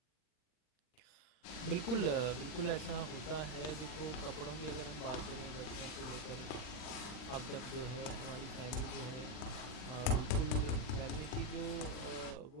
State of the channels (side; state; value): right; late; 40 ms